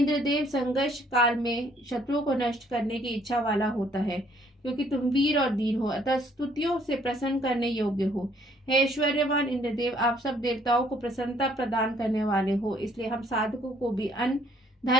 संघर्ष काल में शत्रुओं को नष्ट करने की इच्छा वाला होता है, क्योंकि तुम वीर और धीर हो, अतः स्तुतियों से प्रसन्न करने योग्य हो। हे ऐश्वर्यवान इंद्रदेव, आप सब देवताओं को प्रसन्नता प्रदान करने वाले हो, इसलिए हम साधकों को भी अन्न,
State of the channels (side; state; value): both; normal; correlation 0.64